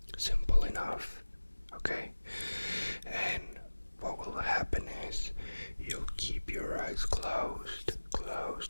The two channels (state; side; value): inverted; both; correlation -1.00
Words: Simple enough, okay? And what will happen is you'll keep your eyes closed